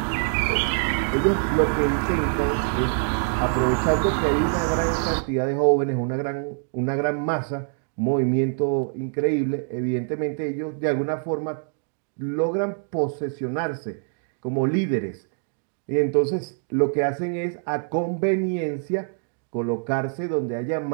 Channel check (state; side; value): silent; left; 61 dB below the other